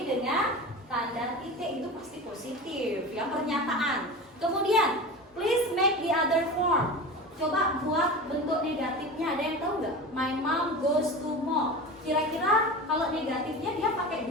dengan tanda titik, itu pasti positif, yang pernyataan. Kemudian, please make the other form. Coba buat bentuk negatifnya, ada yang tahu nggak? My mom goes to mall. Kira-kira kalau negatifnya dia pakai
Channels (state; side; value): normal; both; correlation 0.30